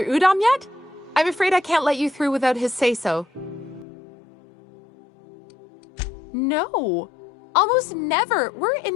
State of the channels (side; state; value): right; drops out; at 3.9 s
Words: Udom yet? I'm afraid I can't let you through without his say-so. No. Almost never. We're